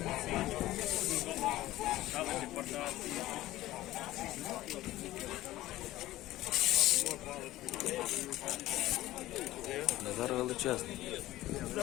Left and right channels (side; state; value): right; quieter; 16.0 dB